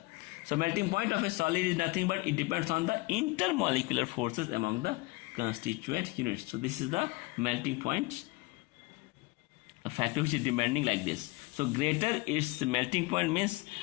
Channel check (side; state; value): right; quieter; 23.2 dB